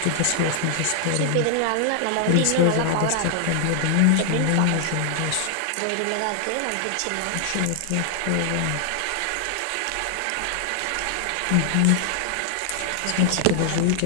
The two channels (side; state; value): both; different; correlation 0.00